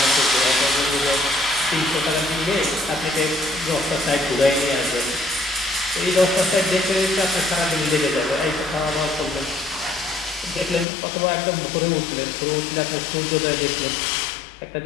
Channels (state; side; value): drops out; right; at 10.9 s